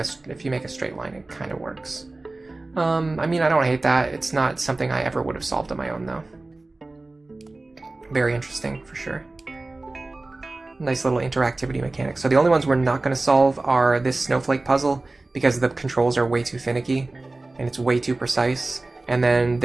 straight line, it kind of works. I mean, I don't hate that. It's not something I ever would have solved on my own, though. Very interesting, for sure. Nice little interactivity mechanic. So the only ones we're not going to solve are this snowflake puzzle, because the controls are way too finicky, and it's way too precise. And then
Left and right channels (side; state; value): left; quieter; 3.1 dB